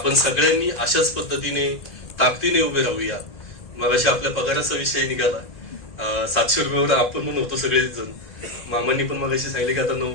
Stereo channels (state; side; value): late; right; 2.0 ms